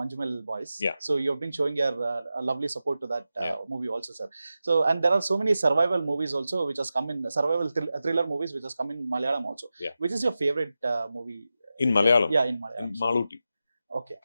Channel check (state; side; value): inverted; both; correlation -0.92